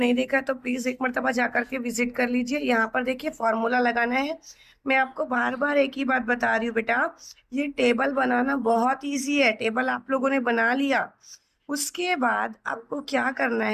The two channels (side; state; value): both; identical; correlation 1.00